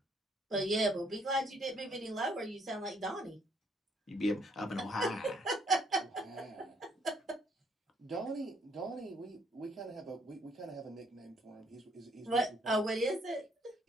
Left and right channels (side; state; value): both; normal; correlation 0.67